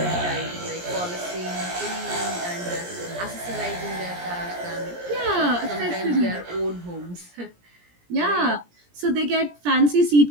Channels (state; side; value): late; left; 17 ms